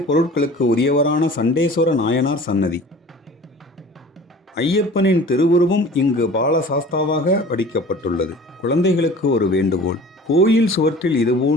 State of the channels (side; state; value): both; normal; correlation 0.43